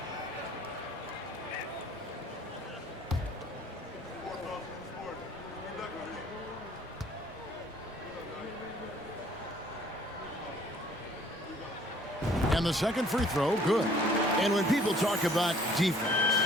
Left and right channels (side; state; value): both; normal; correlation 0.57